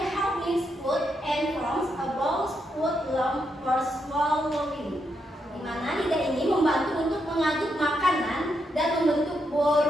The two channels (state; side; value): normal; both; correlation 0.81